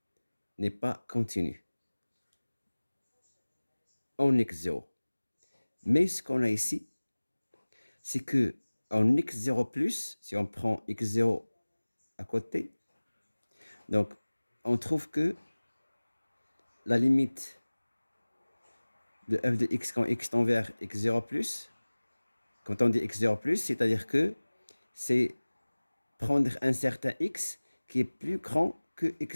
n'est pas continue en x0. Mais ce qu'on a ici, c'est que en x0+, si on prend x0 à côté, donc on trouve que la limite de f de x quand x tend vers x0+, quand on dit x0+, c'est-à-dire que c'est prendre un certain x qui est plus grand que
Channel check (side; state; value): both; inverted; correlation -1.00